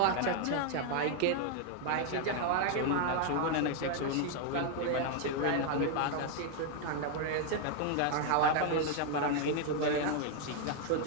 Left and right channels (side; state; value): both; different; correlation 0.01